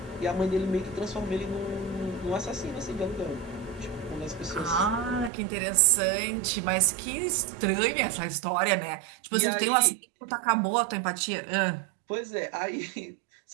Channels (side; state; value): left; drops out; at 5.3 s